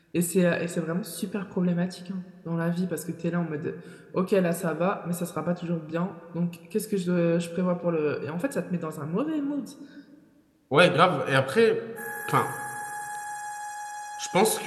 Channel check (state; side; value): identical; both; correlation 1.00